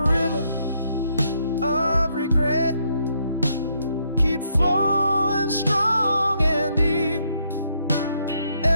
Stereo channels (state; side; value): inverted; both; correlation -0.74